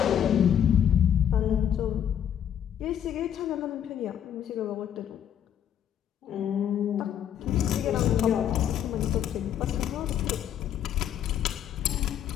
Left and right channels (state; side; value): quieter; right; 9.6 dB